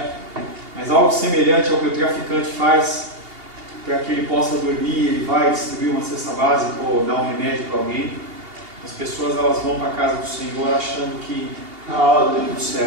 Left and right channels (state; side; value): late; left; 2.8 ms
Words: mas algo semelhante ao que o traficante faz para que ele possa dormir. Ele vai distribuir uma cesta básica ou dar um remédio para alguém. As pessoas, elas vão para a casa do Senhor achando que está tudo